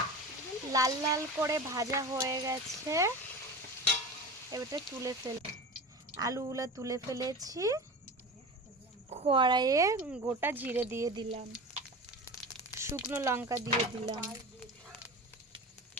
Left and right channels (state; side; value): normal; both; correlation 0.30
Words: লাল লাল করে ভাজা হয়ে গেছে, এবারে তুলে আলুগুলো তুলে ফেলেছি। কড়াইয়ে গোটা জিরে দিয়ে দিলাম, শুকনো লঙ্কা দিয়ে দিলাম